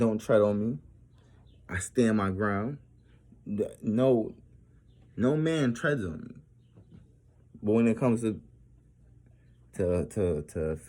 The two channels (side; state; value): both; identical; correlation 1.00